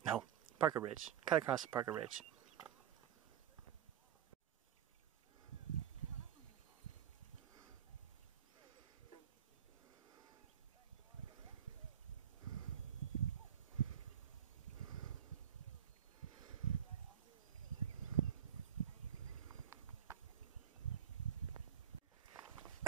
No, Parker Ridge. Cut across to Parker Ridge.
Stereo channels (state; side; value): quieter; left; 9.4 dB